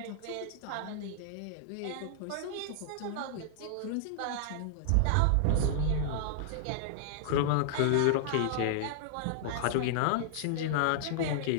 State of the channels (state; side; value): different; both; correlation -0.01